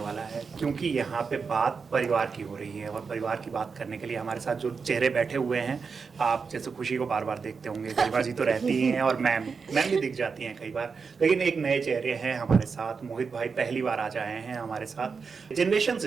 है, क्योंकि यहाँ पे बात परिवार की हो रही है। और परिवार की बात करने के लिए हमारे साथ जो चेहरे बैठे हुए हैं, आप जैसे खुशी को बार बार देखते होंगे, गरिमा जी तो रहती ही हैं और मैम भी दिख जाती हैं कई बार, लेकिन एक नए चेहरे हैं हमारे साथ। मोहित भाई पहली बार आज आए हैं हमारे साथ। जनरेशन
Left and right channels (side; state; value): left; quieter; 5.3 dB